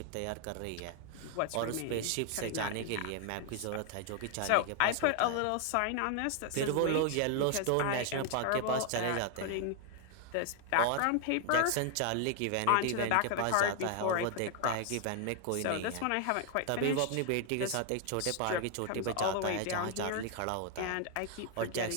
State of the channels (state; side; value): different; both; correlation 0.00